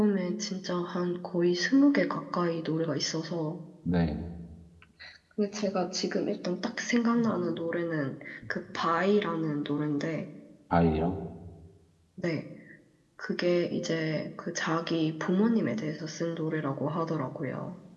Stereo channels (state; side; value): identical; both; correlation 1.00